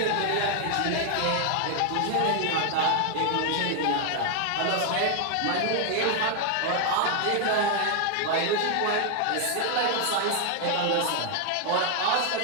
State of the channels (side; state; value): both; different; correlation 0.00